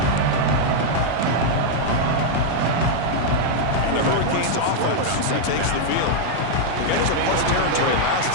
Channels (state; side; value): different; both; correlation -0.01